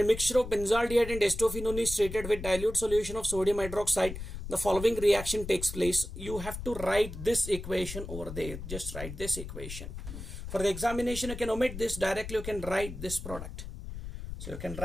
mixture of benzaldehyde and acetophenone is treated with dilute solution of sodium hydroxide, the following reaction takes place. You have to write this equation over there. Just write this equation. For the examination, you can omit this. Directly, you can write this product. So you can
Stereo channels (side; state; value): left; noise; rumble, 9 dB below the sound